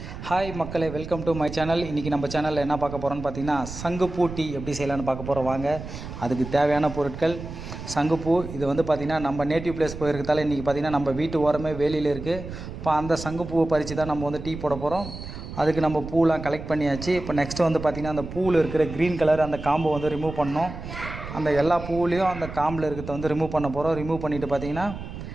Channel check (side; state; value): right; noise; rumble, 10 dB below the sound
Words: Hi மக்களே, welcome to my channel. இன்றைக்கி நம்ம சேனலில் என்ன பார்க்க போகிறோன்னு பார்த்தீங்கன்னா, சங்குப்பூ டீ எப்படி செய்யலான்னு பார்க்க போகிறோம். வாங்க. அதுக்கு தேவையான பொருட்கள் சங்குப்பூ. இது வந்து பார்த்திங்கன்னா நம்ம நேட்டிவ் பிளேஸ் போயிருக்கிறதால இன்றைக்கி பார்த்திங்கன்னா நம்ம வீட்டு ஓரமே வேலியில் இருக்குது. இப்போ அந்த சங்குப்பூவை பறித்து தான் நம்ம வந்து டீ போட போகிறோம். அதுக்கு நம்ம பூலாம் கலெக்ட் பண்ணியாச்சு. இப்போ நெக்ஸ்ட்டு வந்து பார்த்திங்கன்னா அந்த பூவில் இருக்கிற க்ரீன் கலர் அந்த காம்பை வந்து ரிமூவ் பண்ணோம். அந்த எல்லா பூவிலையும் அந்த காம்பில் இருக்கிறத வந்து ரிமூவ் பண்ண போகிறோம். ரிமூவ் பண்ணிவிட்டு பார்த்திங்கன்னா